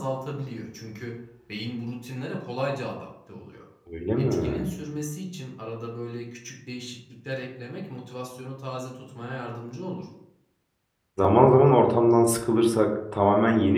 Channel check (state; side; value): identical; both; correlation 1.00